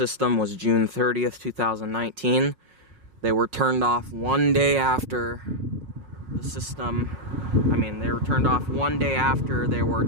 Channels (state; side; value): late; left; 5.5 ms